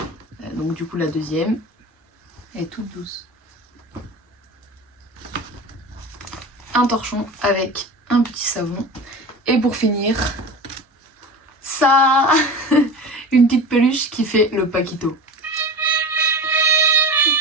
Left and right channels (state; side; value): normal; both; correlation 0.31